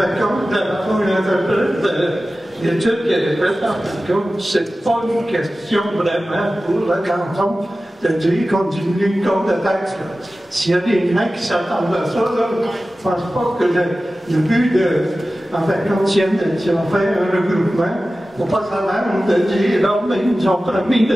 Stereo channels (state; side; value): normal; both; correlation 0.95